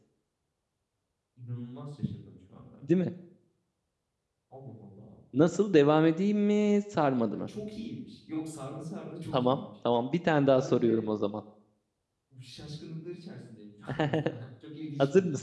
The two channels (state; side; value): identical; both; correlation 1.00